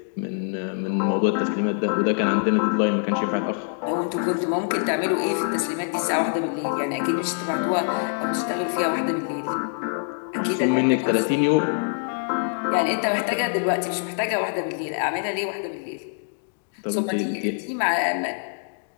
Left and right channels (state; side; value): silent; right; digital silence